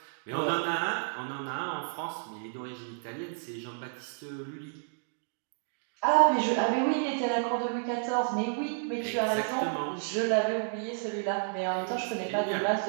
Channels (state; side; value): silent; left; digital silence